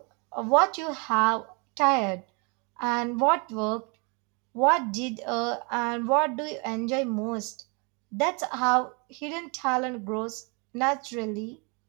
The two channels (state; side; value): quieter; left; 32.5 dB